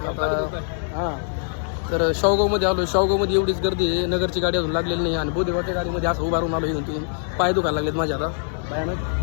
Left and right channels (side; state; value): right; silent; digital silence